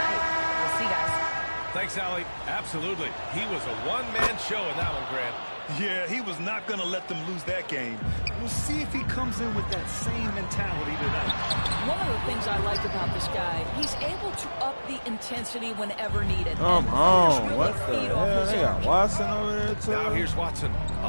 We'll see, guys. Thanks, Allie. Absolutely. He was a one-man show in that one, Grant. Yeah, he was not going to let them lose that game. We'll see if he comes in with that same mentality tonight. One of the things I like about this guy, he's able to up the intensity whenever needed. Come on. What the hell? They got Watson over there, too. Now here's Watson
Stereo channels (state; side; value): inverted; both; correlation -1.00